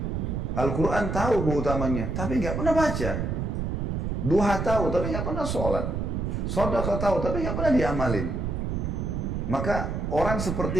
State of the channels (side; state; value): right; noise; rumble, 2 dB below the sound